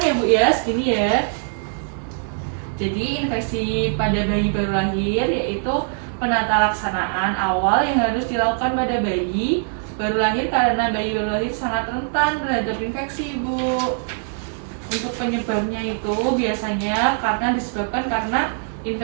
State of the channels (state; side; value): silent; left; digital silence